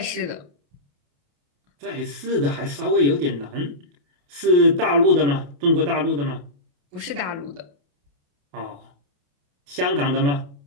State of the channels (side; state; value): left; late; 28 ms